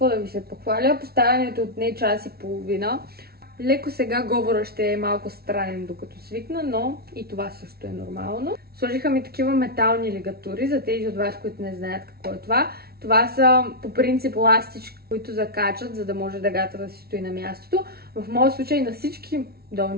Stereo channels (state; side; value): late; left; 0.45 ms